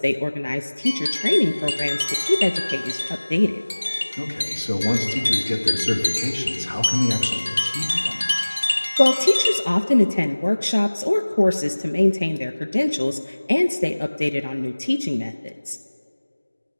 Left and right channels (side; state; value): both; inverted; correlation -1.00